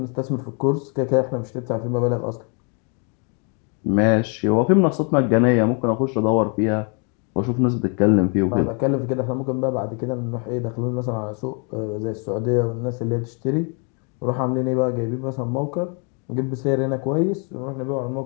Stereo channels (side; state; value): right; quieter; 37.2 dB